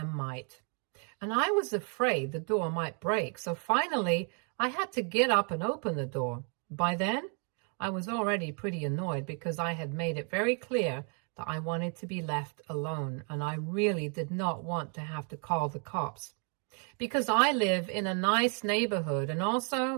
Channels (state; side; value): quieter; left; 39.8 dB